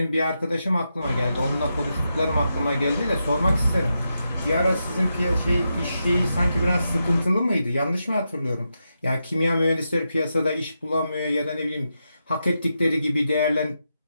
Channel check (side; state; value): both; inverted; correlation -0.86